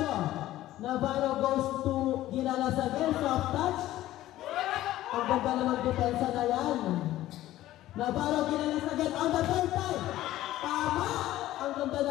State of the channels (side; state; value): right; quieter; 14.8 dB